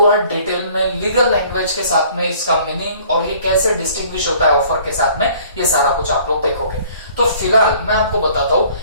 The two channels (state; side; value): inverted; both; correlation -0.54